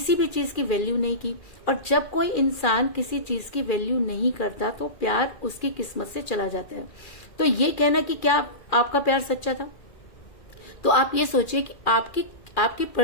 भी चीज की वैल्यू नहीं की। और जब कोई इंसान किसी चीज की वैल्यू नहीं करता तो प्यार उसकी किस्मत से चला जाता है। तो ये कहना कि क्या आपका प्यार सच्चा था, तो आप ये सोचिए कि आपकी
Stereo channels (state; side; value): late; right; 2.4 ms